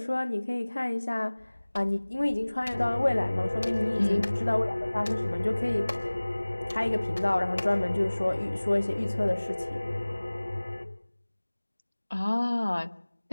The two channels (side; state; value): both; inverted; correlation -1.00